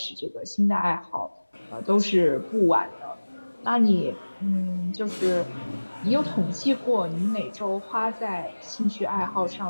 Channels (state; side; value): inverted; both; correlation -1.00